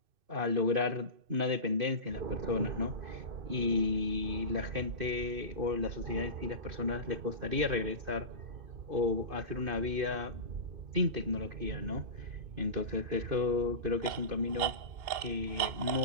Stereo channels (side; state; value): left; late; 2.5 ms